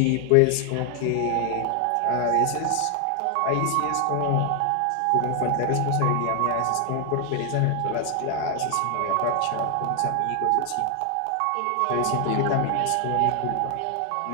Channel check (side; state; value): both; different; correlation 0.00